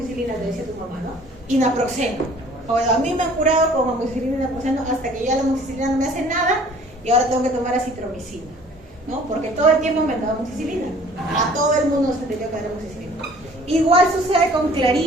te decía tu mamá, ¿no? Y naproxeno. Bueno, a mí me han curado con amoxicilina y naproxeno hasta que ya la amoxicilina no me hace nada y ahora tengo que tomar acitromicina, ¿no? Porque todo el tiempo me han dado amoxicilina. A todo el mundo se tenía que dar amoxicilina. Igual sucede con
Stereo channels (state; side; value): normal; both; correlation 0.53